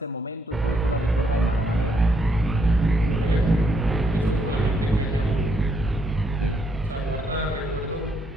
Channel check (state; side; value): normal; both; correlation 0.74